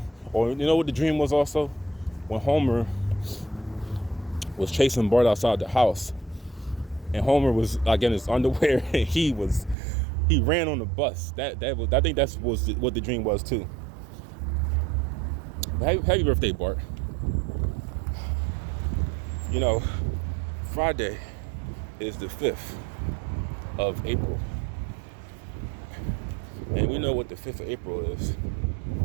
or you know what the dream was also? When Homer was chasing Bart outside the house, and Homer was like in his underwear, and he ran on the bus. I think that was what the dream was too. But happy birthday, Bart. You know, Friday is the 5th of April. And we know what the 5th of April is.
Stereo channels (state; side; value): drops out; left; at 9.8 s